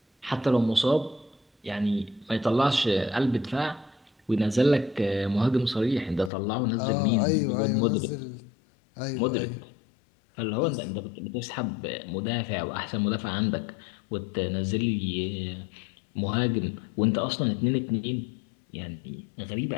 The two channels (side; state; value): right; drops out; at 6.3 s